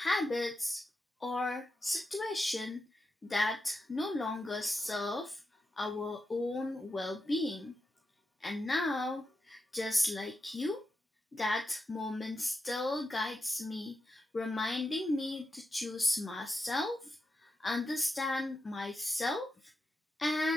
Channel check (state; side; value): normal; both; correlation 0.88